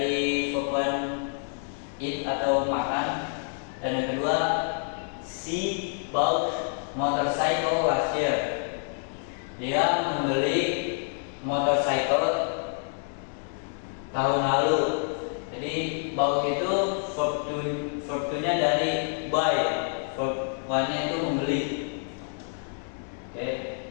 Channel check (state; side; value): silent; right; 59 dB below the other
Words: verb one eat atau makan, dan yang kedua she bought motorcycle last year. Dia membeli motorcycle tahun lalu. Jadi bought itu verb to nya dari buy, verb one nya itu membeli. Oke,